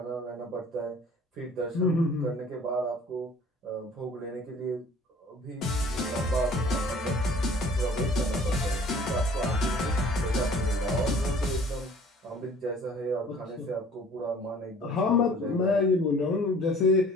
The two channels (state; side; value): normal; both; correlation 0.51